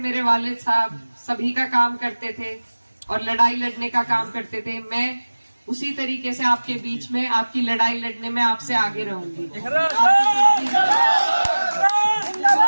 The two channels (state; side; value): inverted; both; correlation -1.00